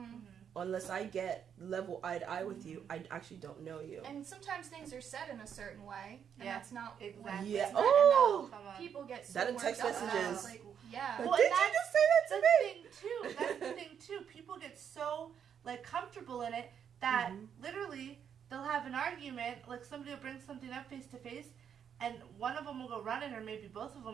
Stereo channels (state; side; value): quieter; left; 8.1 dB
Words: Unless I get level eye to eye with you, I actually don't know you. And sometimes things are said in a certain way, and Yeah, that's not Exactly. Yeah. It's not Oh! enough. Come on. people get so That in worked text up about. messages. Like, yeah. Well, Did and you that's just say that to the me? thing too. That's the thing too. People get so like comfortable in it that literally they'll have an argument. Like somebody will bring something up face to face, and one of them will go running, or maybe both of